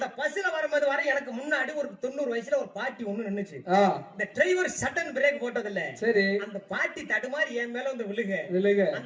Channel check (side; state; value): both; identical; correlation 1.00